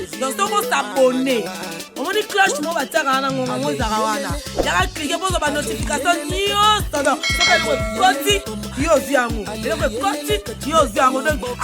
donc soko s'abonner omoni cloche mo batiaka wana ngonga ngo ezaka wana yaka klike bozo banotification nyonso donc soka eloko ekoti yo ozwi yango eloko ekoti yo ozwi yango donc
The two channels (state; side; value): identical; both; correlation 1.00